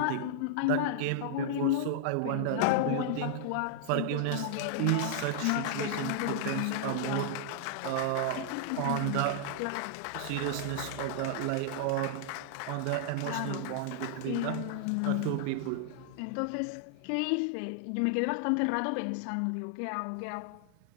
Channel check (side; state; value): both; different; correlation -0.01